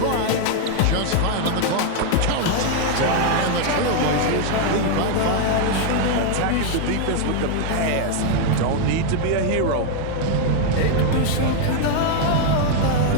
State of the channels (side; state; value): both; different; correlation 0.00